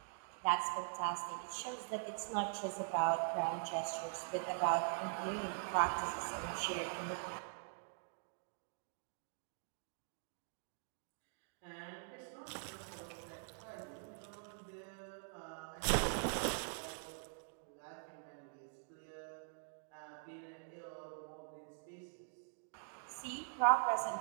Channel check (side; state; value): left; silent; digital silence